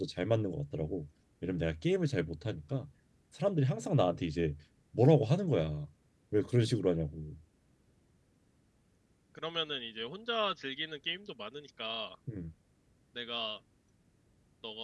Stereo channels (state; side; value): identical; both; correlation 1.00